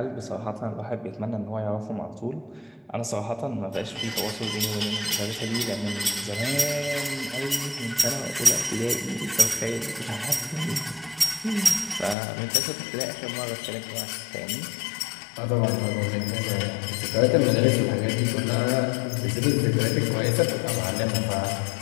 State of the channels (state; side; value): drops out; right; at 12.2 s